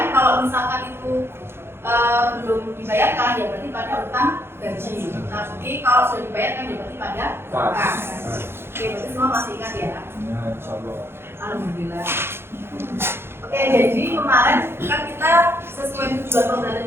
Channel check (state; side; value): late; left; 0.11 ms